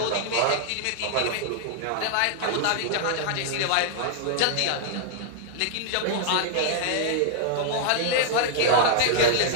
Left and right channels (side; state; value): both; different; correlation -0.01